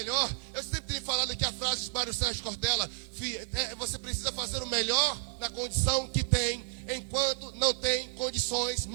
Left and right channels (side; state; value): left; silent; 57 dB below the other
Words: Eu sempre tenho falado aqui a frase de Mário Sérgio Cortella: você precisa fazer o melhor na condição que tem, enquanto não tem condições